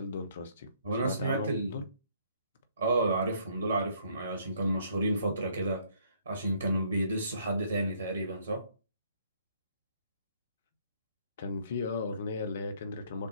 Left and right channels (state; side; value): inverted; both; correlation -0.65